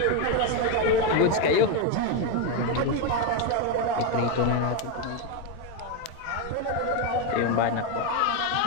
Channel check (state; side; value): different; both; correlation 0.03